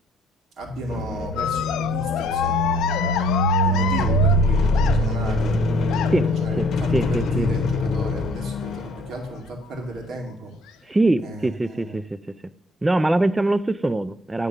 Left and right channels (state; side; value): normal; both; correlation 0.60